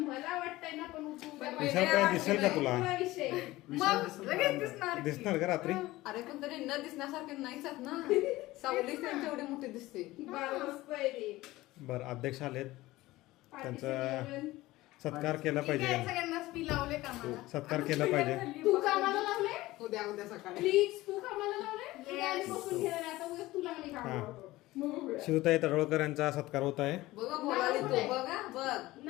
मला वाटतंय ना पण उद्या विशाल काय दिसेल का तुला? पुरा विषय. विशाल मग दिसत लगेच नाही. दिसणार की. दिसणार का रात्री? अरे पण तरी न दिसण्यासारखे नाहीच आहेत ना. सावली त्यांची एवढी मोठी दिसते. बरं, मस्त आहे ते. बरं अध्यक्ष आलेत, पार्टीचं त्यांचा नियोजन. सत्कार केला ठीक आहे, पाहिजे. सगळ्यांना स्पी लावले का मला? सत्कार केला पाहिजे. तू कामाला लावले उद्या सकाळी. प्लीज तू कामाला लावले Yes. उद्या आणि बसून घेणार आहे. आता उद्या तुला मी कामाला हा. लावतो. मग बघूया. शिवताई तडवळकर यांचा सत्कार होत आहे. बघा बोलाली तू बघा बघ.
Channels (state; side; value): quieter; right; 18.1 dB